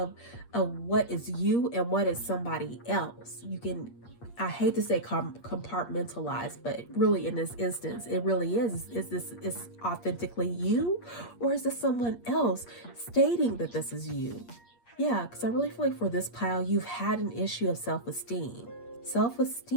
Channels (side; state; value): right; late; 8.5 ms